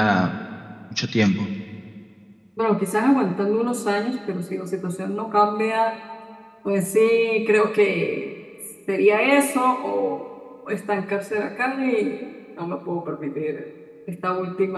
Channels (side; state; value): both; identical; correlation 1.00